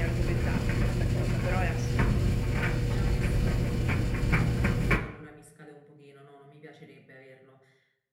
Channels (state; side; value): identical; both; correlation 1.00